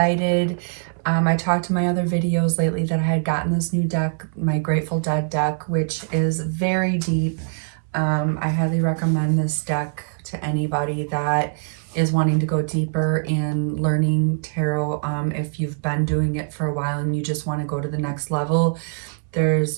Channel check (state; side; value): silent; left; 64 dB below the other